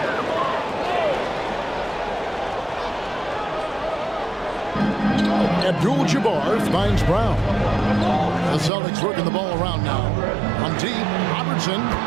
Abdul-Jabbar finds Brown. The Celtics working the ball around now. On deep, Robertson.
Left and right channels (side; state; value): left; drops out; at 8.7 s